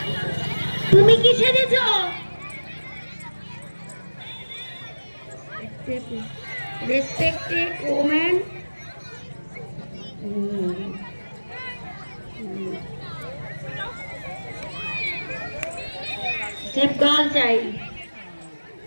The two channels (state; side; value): inverted; both; correlation -1.00